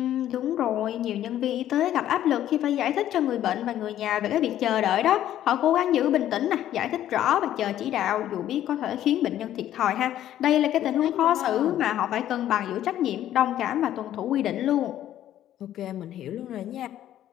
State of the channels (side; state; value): right; quieter; 12.0 dB